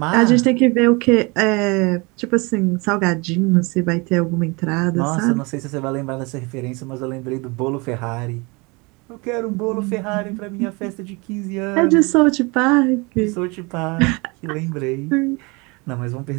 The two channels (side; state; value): left; quieter; 27.6 dB